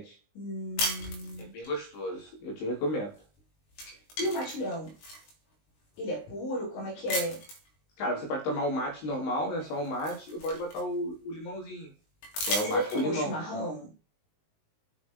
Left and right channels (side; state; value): right; late; 19 ms